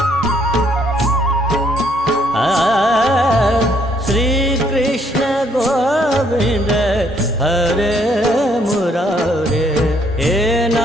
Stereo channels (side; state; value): both; normal; correlation 0.68